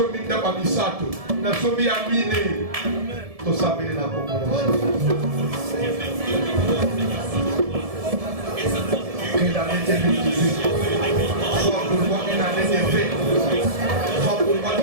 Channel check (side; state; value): left; late; 1.7 ms